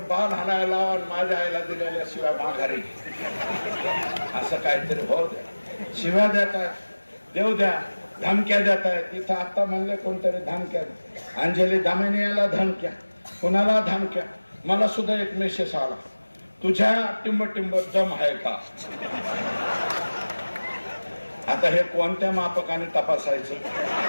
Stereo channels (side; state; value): both; inverted; correlation -1.00